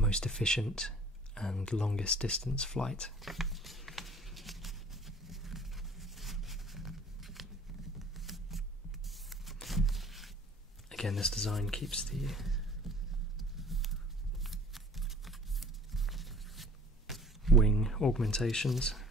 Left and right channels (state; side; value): normal; both; correlation 0.50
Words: efficient and longest distance flight. Again, this design keeps the wing augmentations